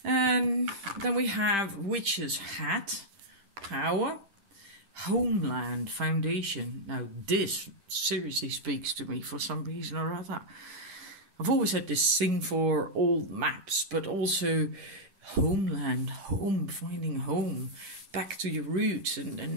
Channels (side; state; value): left; late; 10 ms